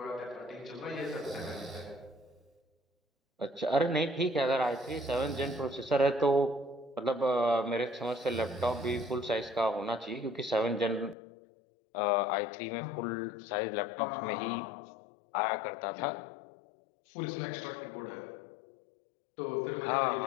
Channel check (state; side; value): drops out; right; at 11.2 s